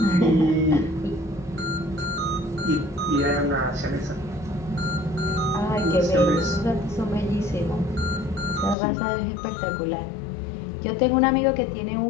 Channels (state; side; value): drops out; right; at 8.8 s